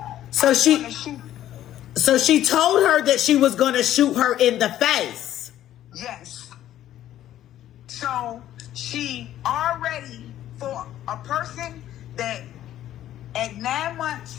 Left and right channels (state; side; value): quieter; right; 12.4 dB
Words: So she told her that she was going to shoot her in the face. Yes. So she already, for a person that at 9